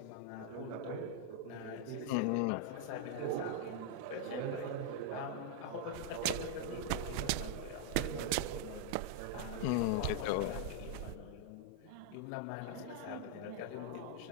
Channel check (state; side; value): different; both; correlation -0.01